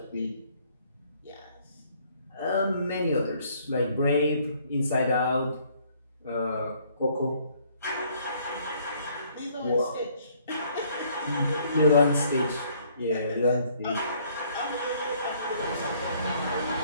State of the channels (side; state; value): both; inverted; correlation -0.63